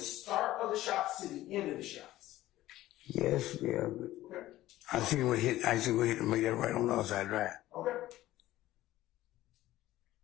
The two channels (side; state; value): right; quieter; 15.4 dB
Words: of the shots to the end of the shots? Yes, yeah. Okay. I see what hit to make that right on the outside drive. Okay.